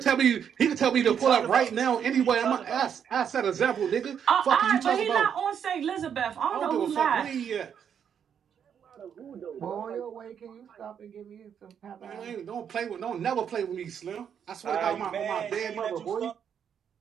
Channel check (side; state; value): left; quieter; 8.1 dB